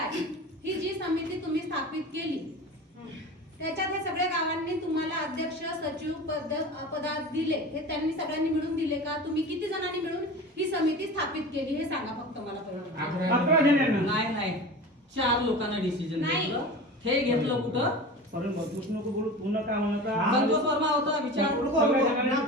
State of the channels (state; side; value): normal; both; correlation 0.33